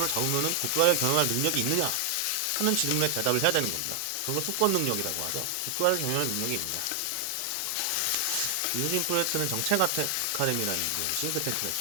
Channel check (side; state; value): both; different; correlation 0.00